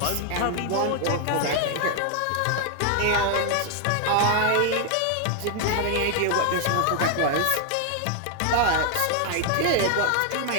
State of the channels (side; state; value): both; different; correlation 0.00